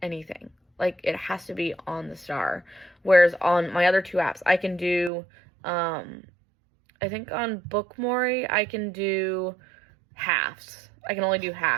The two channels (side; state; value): left; drops out; at 5.1 s